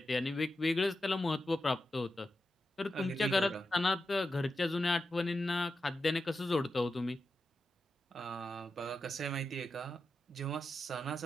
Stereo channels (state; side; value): normal; both; correlation 0.90